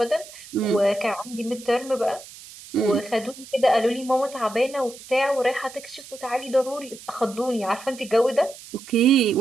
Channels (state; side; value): noise; right; hiss, 17 dB below the sound